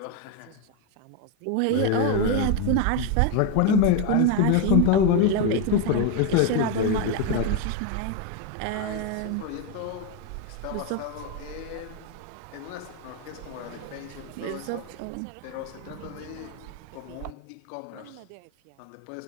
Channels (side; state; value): both; different; correlation 0.02